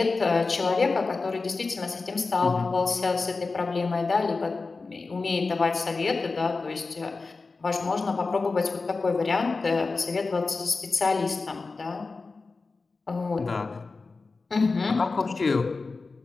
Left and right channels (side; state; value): right; quieter; 4.0 dB